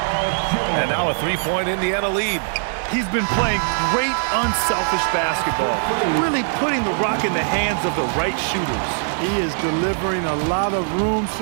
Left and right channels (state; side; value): silent; left; digital silence